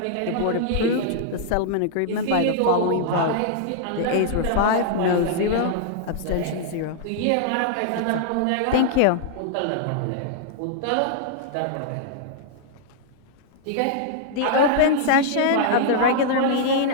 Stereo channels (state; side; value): different; both; correlation -0.01